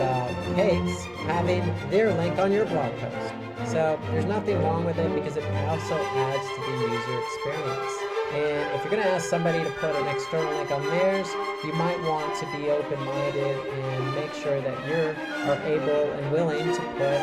cakes, having their link on your blog post. So there's nothing wrong with it because it also adds to the user experience. And if you're going to ask somebody to put an external link on theirs, you might want to be open-minded and make sure that you are able and willing to put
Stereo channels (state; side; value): identical; both; correlation 1.00